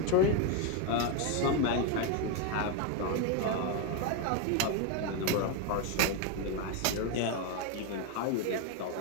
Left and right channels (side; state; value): both; different; correlation 0.02